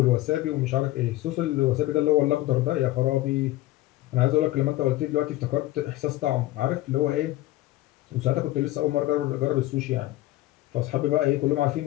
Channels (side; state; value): right; quieter; 16.9 dB